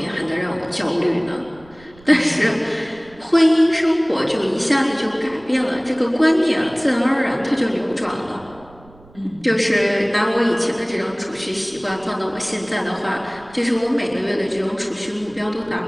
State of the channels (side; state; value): right; noise; rumble, 25 dB below the sound